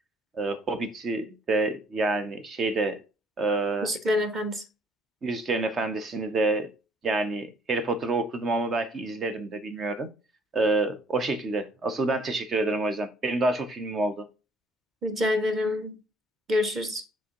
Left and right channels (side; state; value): both; normal; correlation 0.61